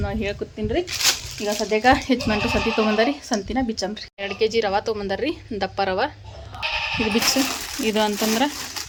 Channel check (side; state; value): both; identical; correlation 1.00